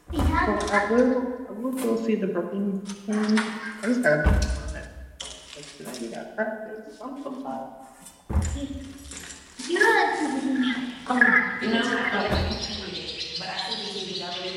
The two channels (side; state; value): both; identical; correlation 1.00